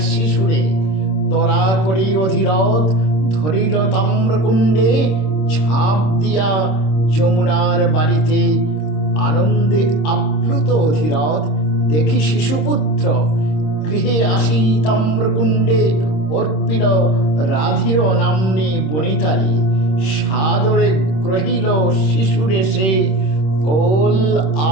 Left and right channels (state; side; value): late; right; 26 ms